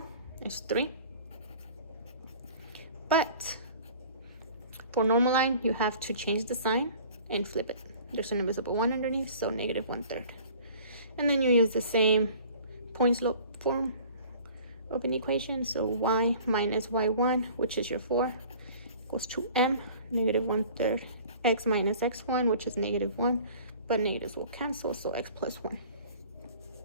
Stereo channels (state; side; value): inverted; both; correlation -0.47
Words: it's 3. But for normal line, you have to change the sign and flip it. There's an invisible 1 underneath, so negative 1/3. And then you use the same point slope form of an equation. So y minus y1, which is your 4, equals to m, negative 1/3 x minus x1, which is negative 1, but negatives will cancel, so x plus 1.